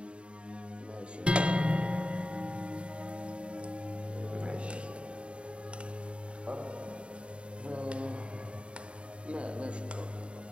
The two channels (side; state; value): left; late; 0.057 ms